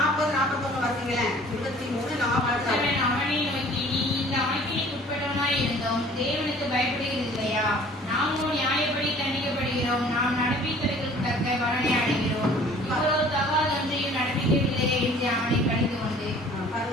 41 வாசிங்களேன். 23 40. அவனை நோக்கி, நீ இந்த ஆக்கினைக்கு உட்பட்டவனாய் இருந்தோம் தேவனுக்கு பயப்படுகிறது இல்லையா? நாமோ நியாயப்படி தண்டிக்கப்படுகிறோம். நாம் நடப்பித்தவர்களுக்கு தக்க பலனை அடைகிறோம். இவ்வளவு தகாதொன்றையும் நடப்பிக்கவில்லையே என்று அவனை கடிந்து கொண்டு.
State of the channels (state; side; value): normal; both; correlation 0.51